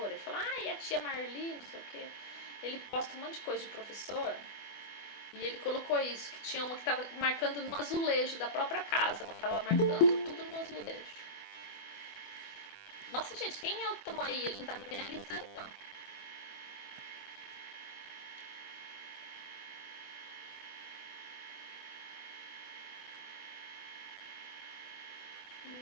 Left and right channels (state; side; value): late; right; 24 ms